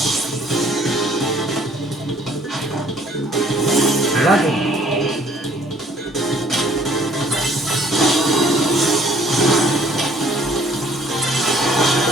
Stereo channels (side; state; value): both; normal; correlation 0.58